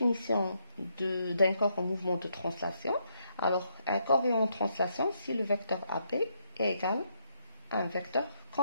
d'un corps en mouvement de translation. Alors, un corps est en translation si le vecteur AB est égal à un vecteur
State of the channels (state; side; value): inverted; both; correlation -0.77